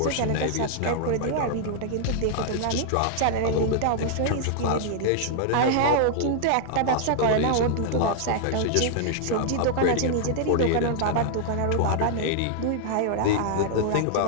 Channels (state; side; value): different; both; correlation -0.01